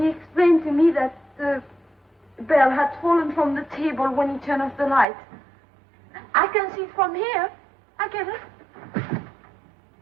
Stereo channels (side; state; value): left; drops out; at 5.1 s